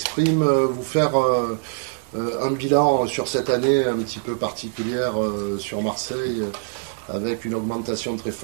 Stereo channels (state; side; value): silent; left; 57 dB below the other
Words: vous faire un bilan sur cette année un petit peu particulière sur Marseille, avec une augmentation très